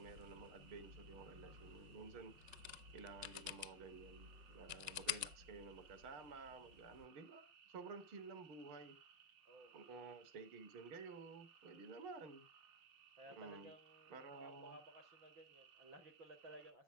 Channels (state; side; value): late; left; 5.5 ms